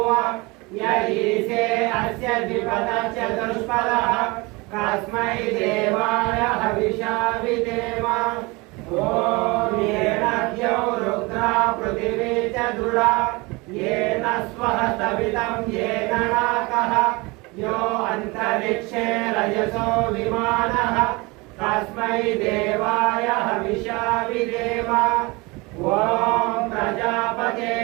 य ईशे अस्य द्विपदः चतुष्पदः तस्मै देवाय हविषा विधेम। ॐ येन द्यौ रुद्रा पृथिवी च दृढा येन स्वः सवितं येन नाकः यो अन्तरिक्षे रजसो विमानः तस्मै देवाय हविषा विधेम। ॐ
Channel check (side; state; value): left; quieter; 25.2 dB